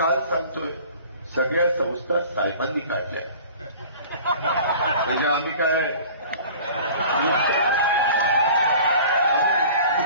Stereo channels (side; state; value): both; inverted; correlation -0.45